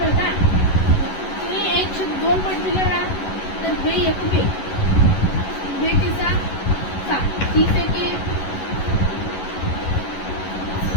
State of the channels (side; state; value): right; late; 11 ms